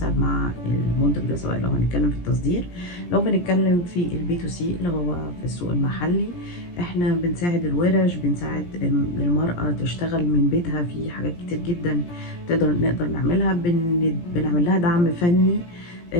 مع المنتج ده، سواء لو هنتكلم في التصدير، لو بنتكلم في البي تو سي اللي هو في السوق المحلي. احنا بنساعد الورش، بنساعد المرأة تشتغل من بيتها في حاجات كتير جدا نقدر نعملها. بنعمل لها دعم فني،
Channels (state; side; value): late; right; 17 ms